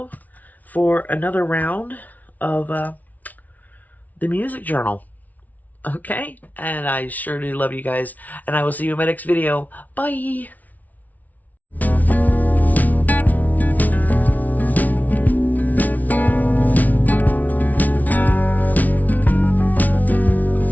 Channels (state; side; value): late; right; 0.075 ms